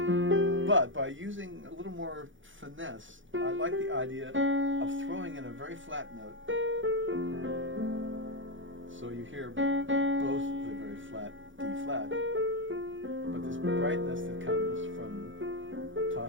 But by using a little more finesse, I like the idea of throwing in a very flat note. So you hear both the very flat D flat, but this brightness that comes from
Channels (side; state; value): left; late; 0.56 ms